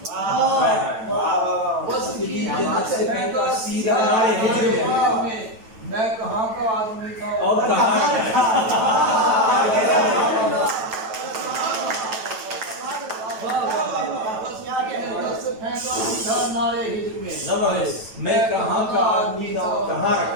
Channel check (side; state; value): left; late; 9.1 ms